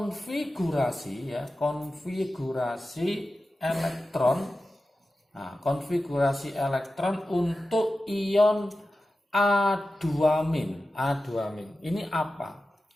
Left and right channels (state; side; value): normal; both; correlation 0.93